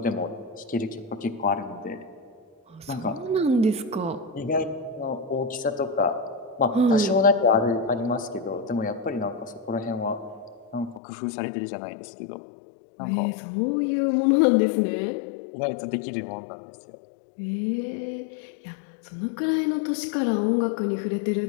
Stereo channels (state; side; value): drops out; right; at 11.0 s